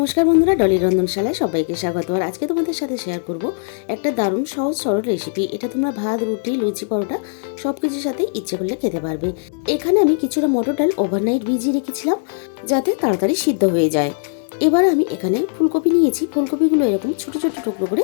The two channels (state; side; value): silent; right; 65 dB below the other